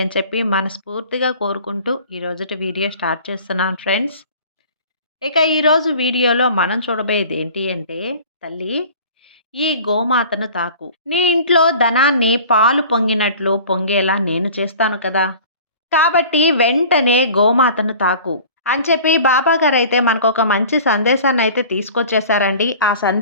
అని చెప్పి మనస్ఫూర్తిగా కోరుకుంటూ ఈ రోజుటి వీడియో స్టార్ట్ చేస్తున్నాను ఫ్రెండ్స్. ఇక ఈరోజు వీడియోలో మనం చూడబోయేది ఏంటి అంటే, తల్లి ఈ గోమాతను తాకు. నీ ఇంట్లో ధనాన్ని పాలు పొంగినట్లు పొంగేలా నేను చేస్తాను కదా! కాబట్టి వెంటనే గోమాతను తాకు అని చెప్పి బాబాగారైతే మనకొక మంచి సందేశాన్నయితే తీసుకొచ్చేసారండి. ఆ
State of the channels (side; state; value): both; inverted; correlation -0.44